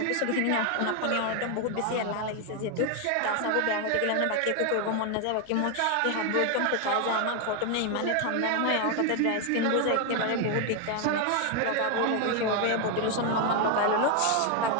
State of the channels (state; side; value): different; both; correlation 0.01